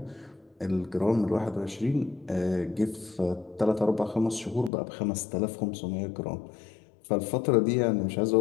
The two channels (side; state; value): right; drops out; at 4.7 s